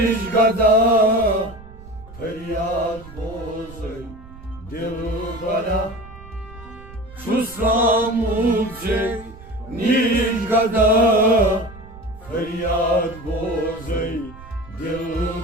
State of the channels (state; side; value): noise; right; rumble, 18 dB below the sound